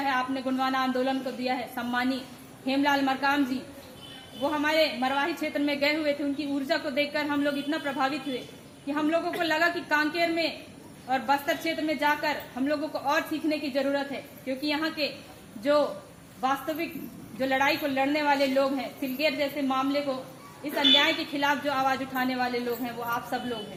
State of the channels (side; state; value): both; identical; correlation 1.00